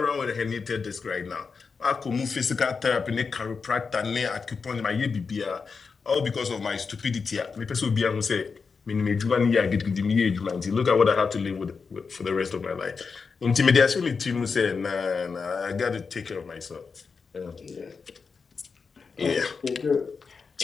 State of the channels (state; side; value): quieter; right; 5.1 dB